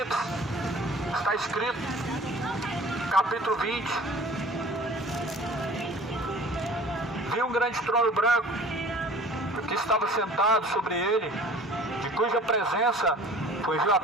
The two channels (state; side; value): normal; both; correlation 0.46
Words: está escrito, capítulo 20: vi um grande trono branco, que estava sentado sobre ele, de cuja presença fugiu a